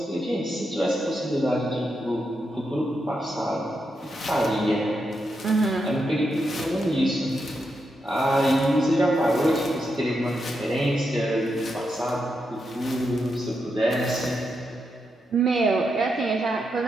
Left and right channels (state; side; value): normal; both; correlation 0.84